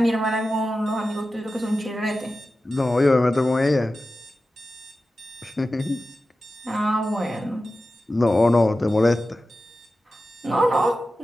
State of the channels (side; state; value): both; normal; correlation 0.94